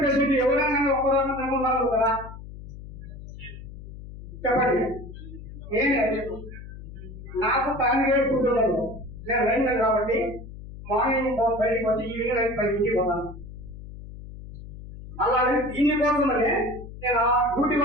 పేషెంట్ ఎవరైనా ఒక్కరోజు నమ్మున్నారు కదా చెప్పండి. నాకు ఫ్యామిలీ ఫుడ్ ఉండదు, నేను రైతు కాబట్టి మార్నింగ్ బయటకు వచ్చి ఈవినింగ్ 10 పోతాను. అలాగే దీనికోసమనే నేను ఆ డ్యూటీ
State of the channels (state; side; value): noise; left; hum, 13 dB below the sound